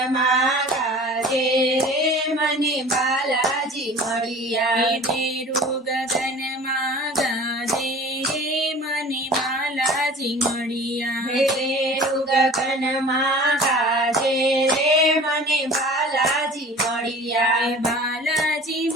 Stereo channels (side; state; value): both; normal; correlation 0.42